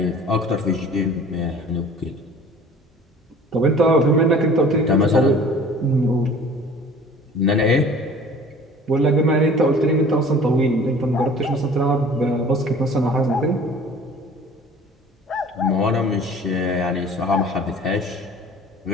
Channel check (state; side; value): normal; both; correlation 0.47